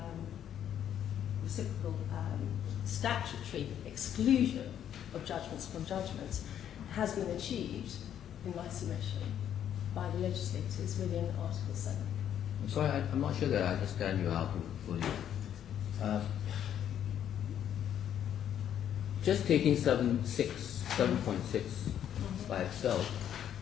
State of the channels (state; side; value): quieter; right; 9.9 dB